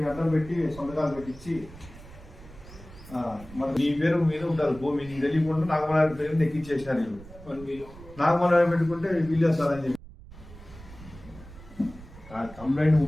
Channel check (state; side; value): noise; right; rumble, 18 dB below the sound